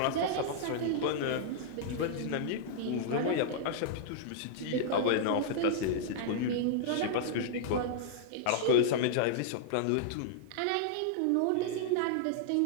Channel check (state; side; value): different; both; correlation -0.01